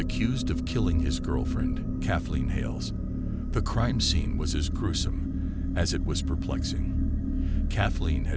of killing his girlfriend, Kathleen Hales. The crime scene was as gruesome as it was perplexing. Kathleen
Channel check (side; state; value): both; identical; correlation 1.00